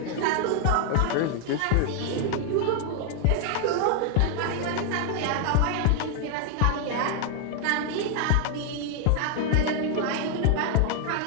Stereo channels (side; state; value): both; different; correlation 0.00